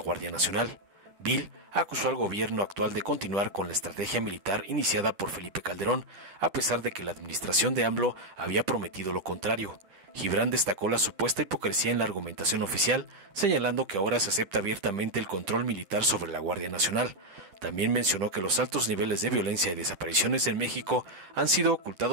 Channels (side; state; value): left; late; 10 ms